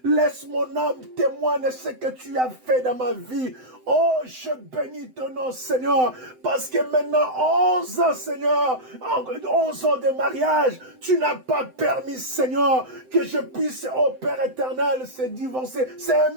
laisse mon âme témoigner ce que tu as fait dans ma vie. Oh, je bénis ton nom, Seigneur, parce que maintenant, 11 ans, Seigneur, 11 ans de mariage, tu n'as pas permis, Seigneur, que je puisse, oh Père éternel, se divorcer. C'est un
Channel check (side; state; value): left; late; 7.8 ms